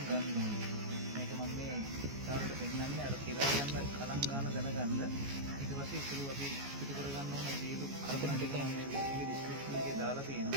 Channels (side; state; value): left; late; 14 ms